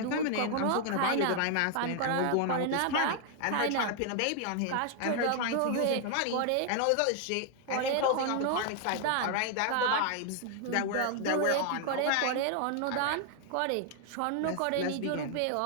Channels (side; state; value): both; different; correlation 0.00